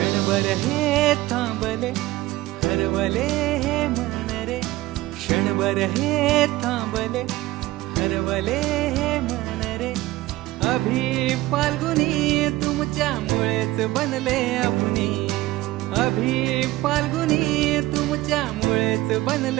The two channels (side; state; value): left; quieter; 17.8 dB